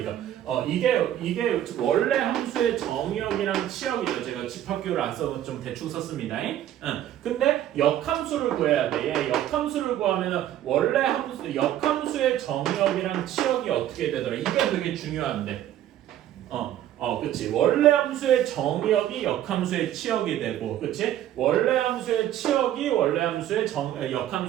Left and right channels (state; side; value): quieter; left; 12.0 dB